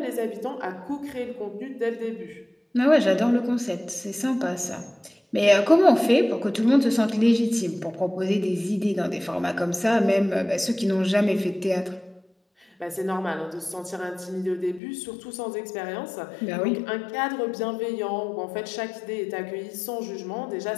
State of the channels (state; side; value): drops out; right; at 14.8 s